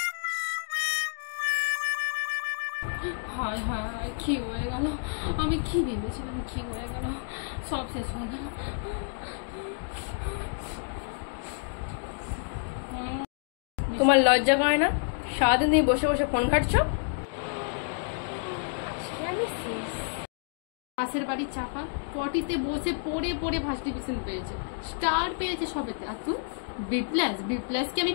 হায় হায়, কি হয়ে গেল? আমি কি ভেবেছিলাম, কি হয়ে গেল? সব শেষ হয়ে গেল। তোমার লজ্জা করে না? সারাদিন তুমি বসে বসে ফোন ঘাটছো। পাশের বাড়ির চাপা পটিতে বসে পড়ে পড়ে ফার্স্ট ডিভিশন পেয়েছে, স্টার পেয়েছে সবেতে। আর তুই বি প্লাস কি আমি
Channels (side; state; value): right; silent; digital silence